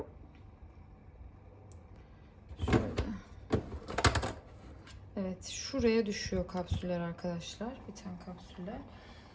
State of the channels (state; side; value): identical; both; correlation 1.00